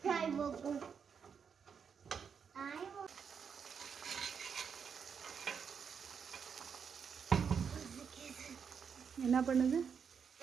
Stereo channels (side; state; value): left; quieter; 6.7 dB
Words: நாய் மோக்கம் என்ன பண்ணுது?